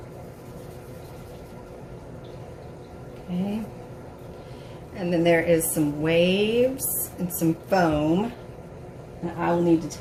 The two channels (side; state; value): both; identical; correlation 1.00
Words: Okay. And then there is some waves and some foam. And I will need to